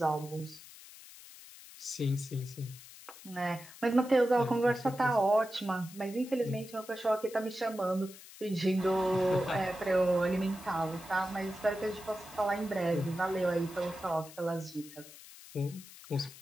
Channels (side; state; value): left; noise; hiss, 18 dB below the sound